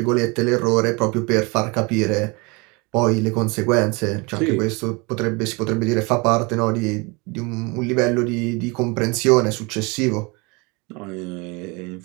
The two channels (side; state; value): left; quieter; 28.2 dB